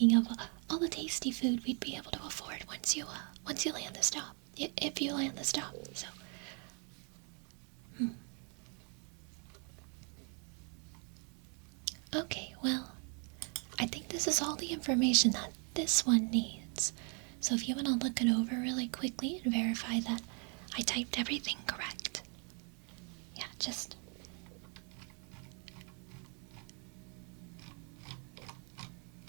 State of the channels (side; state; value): left; quieter; 38.1 dB